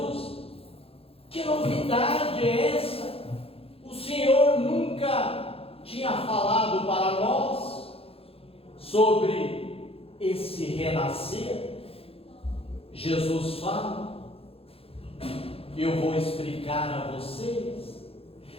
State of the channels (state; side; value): late; right; 0.28 ms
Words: que novidade é essa? O Senhor nunca tinha falado para nós sobre esse renascer. Jesus fala, eu vou explicar a vocês.